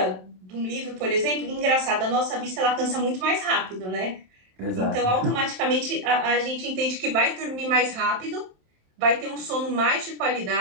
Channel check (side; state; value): left; late; 27 ms